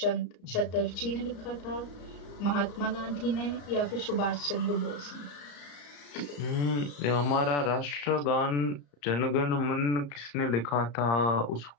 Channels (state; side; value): late; right; 35 ms